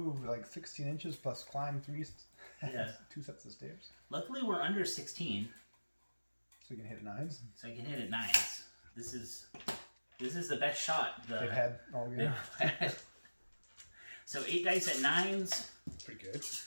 like 16 inches plus climbed 2 sets of stairs. Luckily, we're under 16. So you can hit 9s. So I can hit at 9s. This is the best shot they've had all year. So 8 dice at 9s. Pretty good.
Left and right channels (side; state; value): both; inverted; correlation -1.00